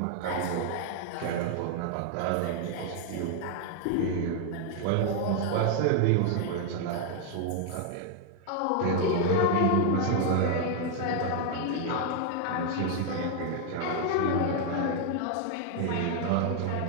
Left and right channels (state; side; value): different; both; correlation 0.00